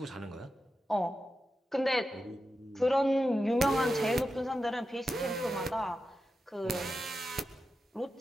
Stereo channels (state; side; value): normal; both; correlation 0.90